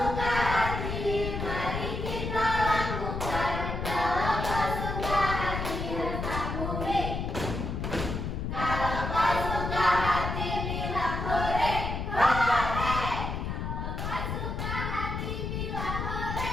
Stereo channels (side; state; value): left; noise; rumble, 3 dB below the sound